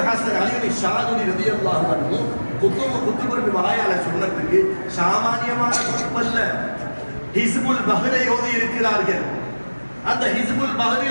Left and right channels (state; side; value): inverted; both; correlation -1.00